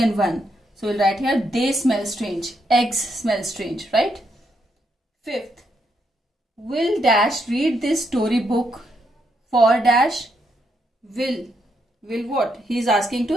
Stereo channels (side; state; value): both; normal; correlation 0.78